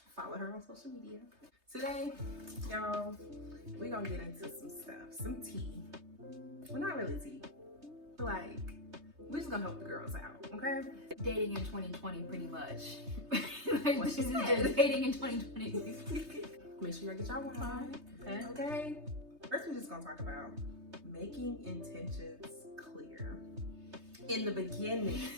Follow her on social media. Today, y'all, we're gonna get into some stuff, some tea. Well, not really tea, but like we're just gonna help the girls out, okay? Dating in 2020, pretty much. What she said. Dating in 2020. Make sure y'all get y'all wine. Okay. First, we're just gonna talk about making intentions clear in the beginning.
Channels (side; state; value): left; late; 3.3 ms